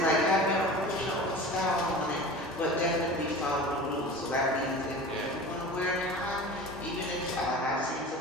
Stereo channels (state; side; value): normal; both; correlation 0.36